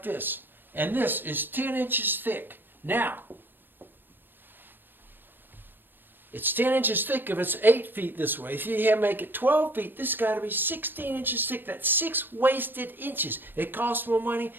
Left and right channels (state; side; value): late; left; 0.095 ms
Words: this. And this is 10 inches thick. Now, it's 10 inches thick if it's 8 feet this way. If you make it 12 feet, this has got to be 16 inches thick. That's 6 wasted inches. It costs more money